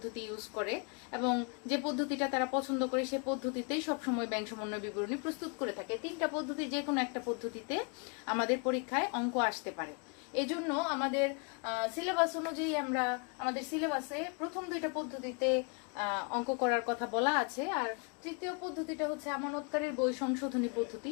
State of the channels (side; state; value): right; quieter; 34.6 dB